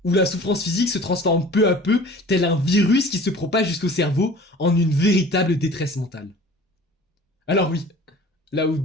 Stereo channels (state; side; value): normal; both; correlation 0.44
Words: où la souffrance physique se transforme peu à peu, tel un virus qui se propage jusqu'au cerveau en une véritable détresse mentale. Alors oui, là où